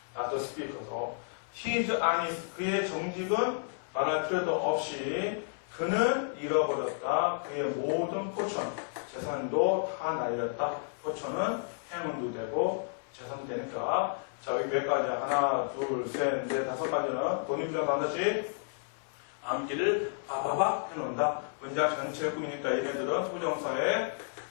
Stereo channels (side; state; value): right; silent; 57 dB below the other